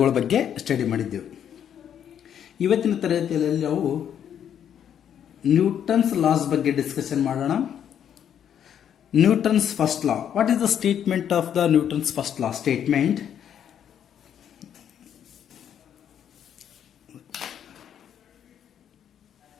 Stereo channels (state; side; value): quieter; right; 9.2 dB